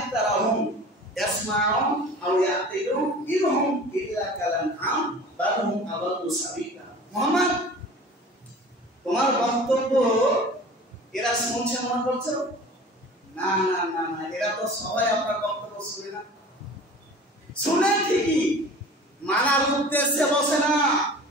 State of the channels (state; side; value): normal; both; correlation 0.41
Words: ইয়াসমাউন আও ইয়াকিলুন ইনহুম ইল্লা কালানআম বাল হুম আদাল্লু সাবিলা। মুহাম্মদ, তোমার বক্তব্য এরা শুনছে মনে করছো? না না না না, এরা তো সবাই আপনার বক্তব্য শুনে না। শুনে ঠিকই, মানার উদ্দেশ্যে বসে না।